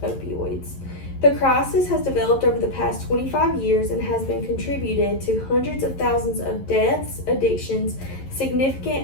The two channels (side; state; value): right; late; 11 ms